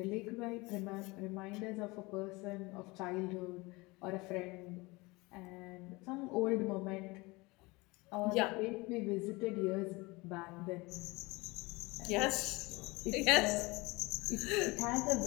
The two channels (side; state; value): right; quieter; 23.9 dB